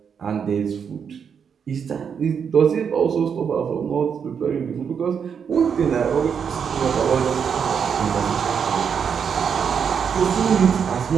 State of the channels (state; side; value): quieter; left; 7.0 dB